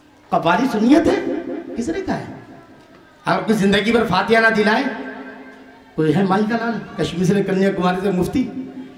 कवारी सुन्नियत है, किसने कहा है? आपकी जिंदगी भर फातिहा ना दिलाए कोई है? माई का लाल कश्मीर से कन्याकुमारी से मुफ्ती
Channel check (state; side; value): identical; both; correlation 1.00